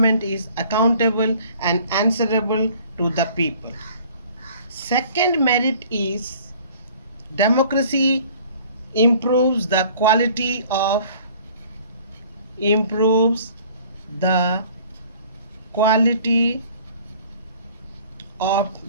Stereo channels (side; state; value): both; inverted; correlation -0.52